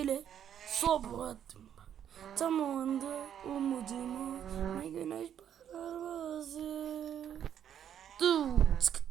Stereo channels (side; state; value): left; quieter; 9.4 dB